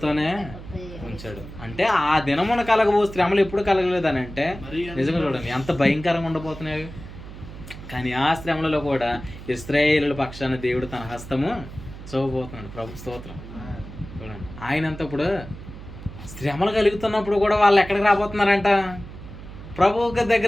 ఉంచాడు. అంటే ఆ దినమున కలగబో శ్రమలు ఎప్పుడు కలగలేదని అంటే నిజంగా చూడండి ఎంత భయంకరంగా ఉండబోతున్నాయి. కానీ ఆ శ్రమలలో కూడా ఇశ్రాయేలుల పక్షాన దేవుడు తన హస్తము చూపబోతున్నాడు. ప్రభు స్తోత్రం. చూడండి, ఆయనంత ఇప్పుడు శ్రమలు కలుగుతున్నప్పుడు కూడా వాళ్ళు ఎక్కడికి రాబోతున్నారంట? ప్రభు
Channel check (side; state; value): right; noise; hum, 14 dB below the sound